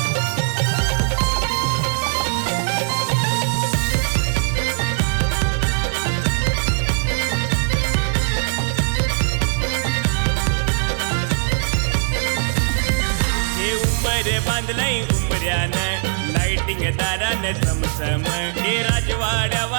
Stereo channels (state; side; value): silent; left; 66 dB below the other